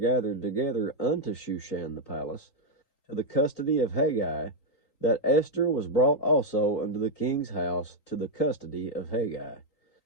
together unto Shushan the palace, to the custody of Hagi, that Esther was brought also unto the king's house to the custody of Hagi,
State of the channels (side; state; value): right; late; 3.8 ms